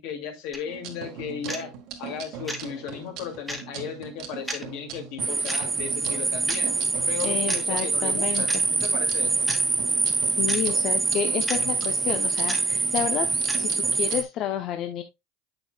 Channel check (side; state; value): both; normal; correlation 0.73